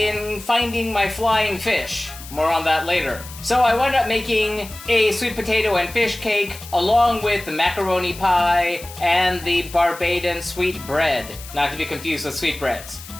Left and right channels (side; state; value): left; noise; hiss, 15 dB below the sound